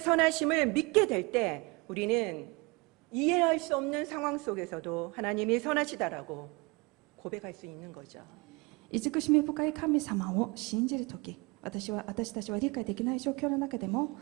믿게 될 때 우리는 이해할 수 없는 상황 속에서도 하나님이 선하시다라고 고백할 수 있는 거죠. 慈しみ深い神様を信じるとき、私たちは理解できない状況の中でも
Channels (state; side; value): quieter; left; 27.1 dB